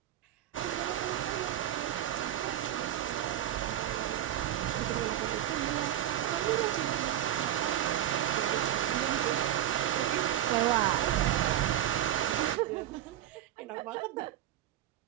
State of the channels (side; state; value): left; quieter; 11.9 dB